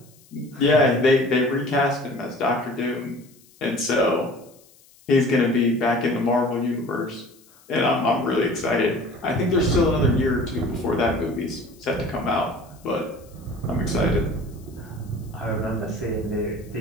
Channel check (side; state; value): left; noise; hiss, 28 dB below the sound